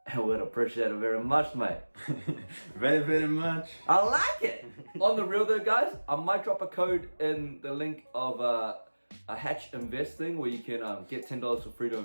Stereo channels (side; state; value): both; inverted; correlation -1.00